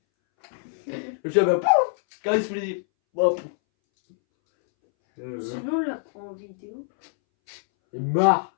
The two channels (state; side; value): silent; right; 62 dB below the other